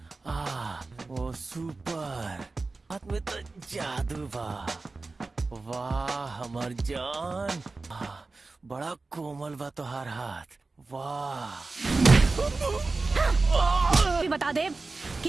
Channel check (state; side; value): quieter; left; 3.6 dB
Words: वो सुपर हाथ में तो जादू बा। वाह हमार जान, बड़ा कोमल बा तोहार हाथ। वाह। भी बता दे